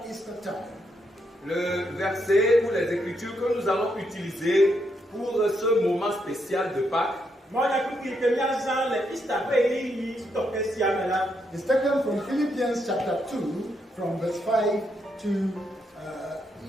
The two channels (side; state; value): both; normal; correlation 0.78